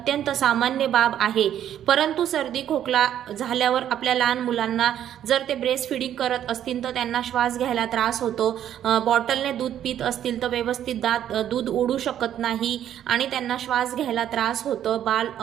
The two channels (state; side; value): quieter; left; 10.6 dB